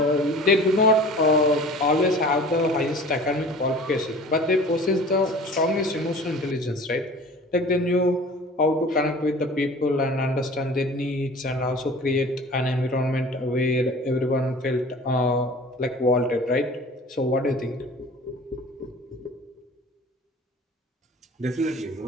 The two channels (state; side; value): normal; both; correlation 0.43